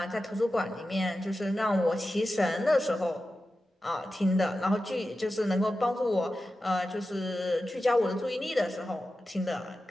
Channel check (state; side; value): normal; both; correlation 0.93